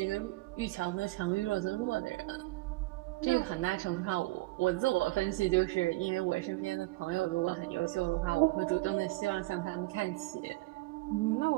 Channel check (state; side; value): quieter; left; 21.0 dB